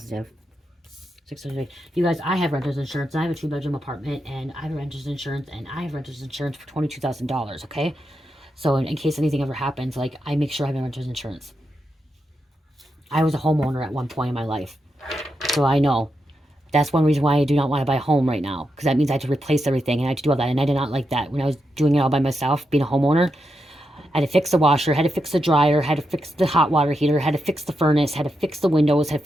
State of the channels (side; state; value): both; normal; correlation 0.85